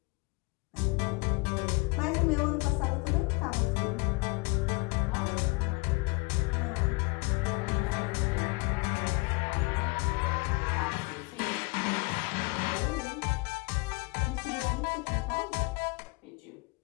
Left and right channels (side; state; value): right; quieter; 27.7 dB